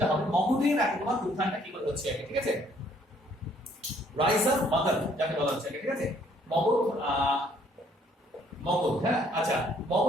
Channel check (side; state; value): both; normal; correlation 0.64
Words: হবে। মগধের একদম উত্থানটা কি করে হচ্ছে আগে, ঠিক আছে। রাইজ অফ মগধ যাকে বলা হচ্ছে আগে, ঠিক আছে। মগধ, হ্যাঁ। আচ্ছা,